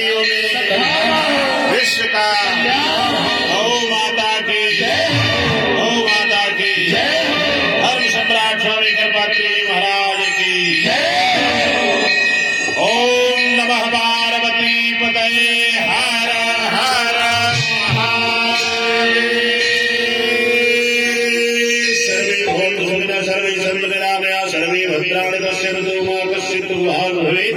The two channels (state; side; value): identical; both; correlation 1.00